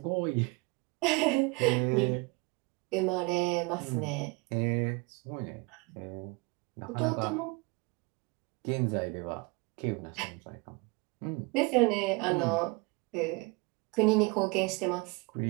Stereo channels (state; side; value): quieter; left; 27.7 dB